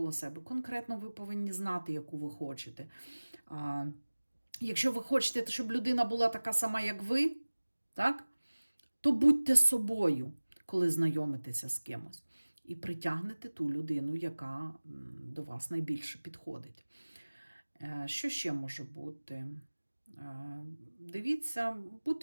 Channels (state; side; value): inverted; both; correlation -1.00